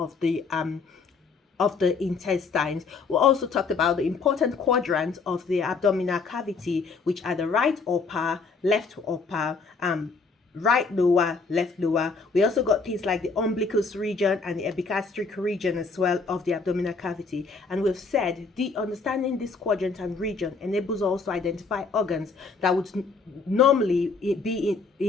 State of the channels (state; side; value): quieter; right; 4.5 dB